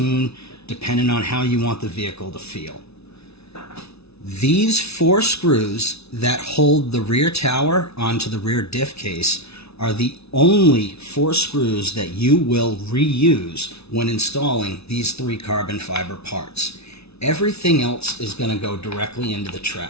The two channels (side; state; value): right; late; 0.80 ms